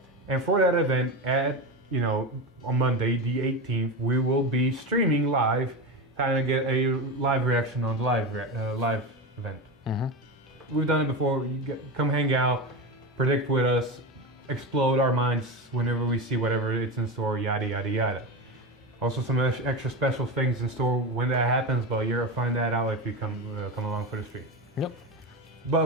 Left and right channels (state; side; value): normal; both; correlation 0.20